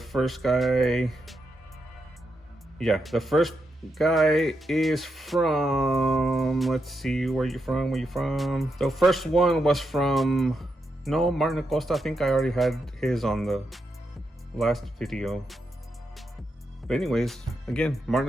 guy, yeah, the first guy is from, let's see, where you from? The first one was from, no, Martin Acosta. I think I already had his on the last video. But anyways, again, Martin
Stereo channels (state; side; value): normal; both; correlation 0.84